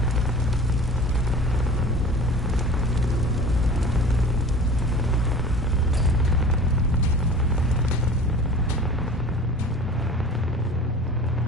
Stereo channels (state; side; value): normal; both; correlation 0.41